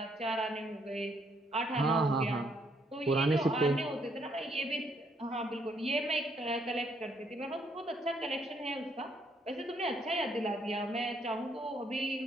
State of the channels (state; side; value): normal; both; correlation 0.71